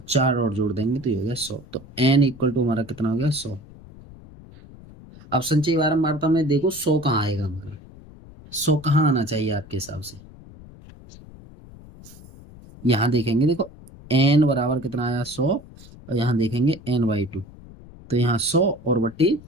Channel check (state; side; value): noise; left; rumble, 20 dB below the sound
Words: 4 और जोड़ देंगे तो ये हो गया 100। तो n इक्वल टू हमारा कितना हो गया, 100। अब संचयी बारंबारता में देखो 100 कहाँ आएगा हमारा, 100 कहाँ आना चाहिए आपके हिसाब से। यहाँ देखेंगे, देखो n बराबर कितना आया, 100, और यहाँ देखेंगे n/2, तो यहाँ 100 और बट्टी